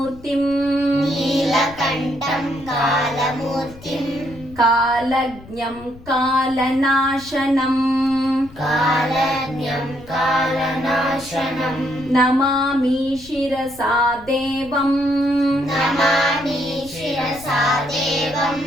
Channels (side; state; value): left; noise; rumble, 20 dB below the sound